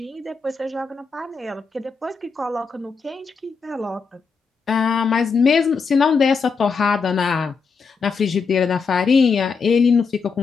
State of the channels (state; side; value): quieter; right; 5.2 dB